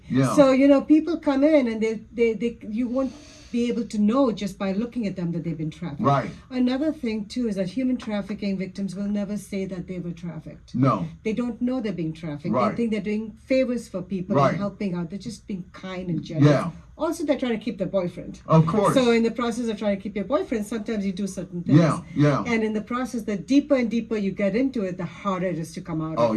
Yeah. So, people come in and they you won't be able to know just by looking at them that they've been trafficked. Right. Another thing too is that human trafficking victims will never say that they were trafficked. No. They don't know they're being trafficked. Right. They think they're doing favors for people and helping out. They're just being kind and generous. Yeah. Also, they're trying to keep their boyfriend. Of course. So in the process of trying to keep your boyfriend, sometimes you do certain things. Yeah. And in the process, the deeper and deeper you get into it, the harder it is to come out of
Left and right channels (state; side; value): identical; both; correlation 1.00